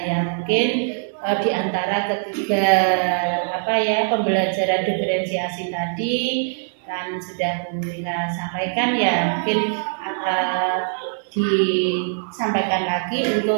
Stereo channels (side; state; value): left; silent; digital silence